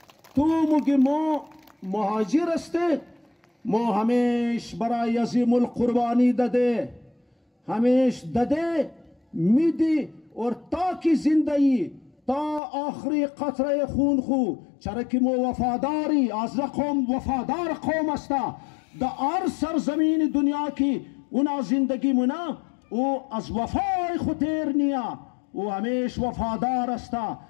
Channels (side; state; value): right; drops out; at 12.6 s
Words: تو مگی مو مہاجر استے مو ہمیش برای از ملک قربانی دده ہمیش دده میدی اور تا کی زندگی تا آخری قطره خون خو چرکی مو وفاداری از قوم وفادار قوم استا دا ار سرزمین دنیا کی اونا زندگی منا او از وفای خطیر نیا او ہمیش وفادار استا